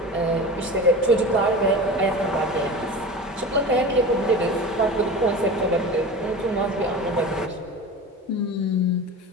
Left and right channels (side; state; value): both; normal; correlation 0.31